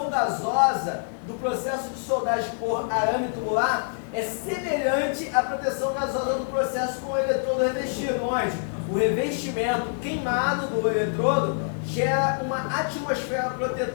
gasosa do processo de soldagem por arame tubular é semelhante à proteção gasosa do processo com o eletrodo revestido, onde o revestimento queimado do eletrodo gera uma atmosfera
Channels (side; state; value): right; silent; digital silence